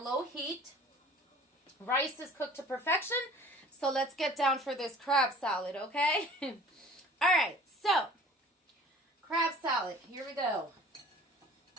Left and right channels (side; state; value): both; normal; correlation 0.47